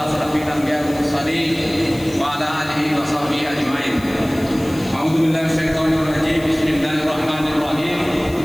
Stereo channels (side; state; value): left; noise; hiss, 19 dB below the sound